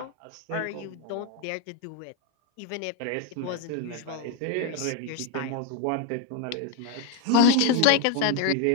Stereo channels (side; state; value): both; different; correlation 0.01